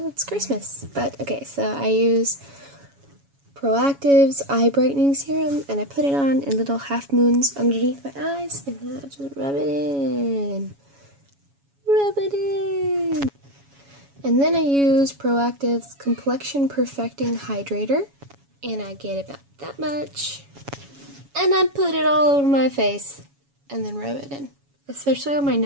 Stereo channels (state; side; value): late; left; 7.2 ms